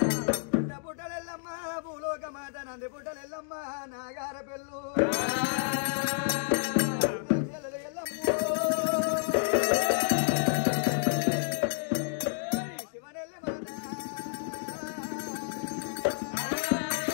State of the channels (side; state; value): right; silent; digital silence